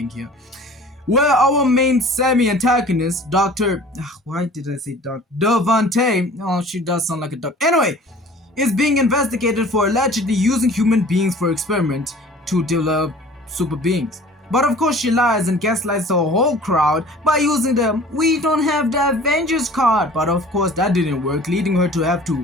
here, where our main semi-antagonist, Dr... why did I say Dr. Devante? Oh, she does sound like a doctor. Anyway, is being investigated for allegedly using human beings for experiment to develop super beings. But of course she lies and gaslights the whole crowd by using the "we don't have the Avengers" card. But of course that didn't work, leading her to have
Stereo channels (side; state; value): both; normal; correlation 0.46